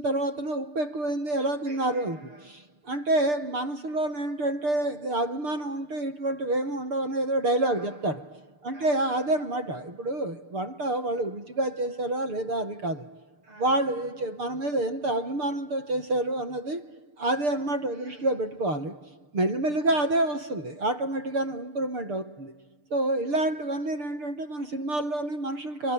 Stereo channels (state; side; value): late; left; 6.7 ms